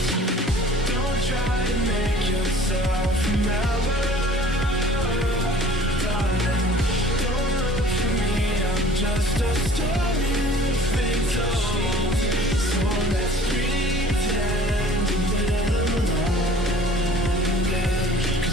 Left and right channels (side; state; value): both; normal; correlation 0.50